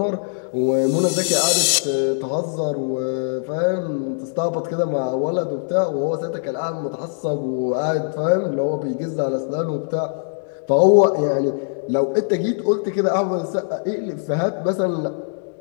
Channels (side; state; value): right; silent; digital silence